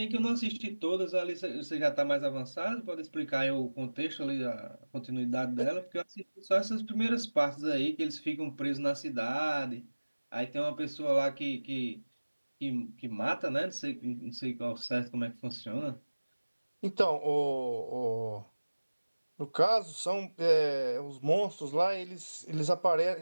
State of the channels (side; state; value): both; inverted; correlation -1.00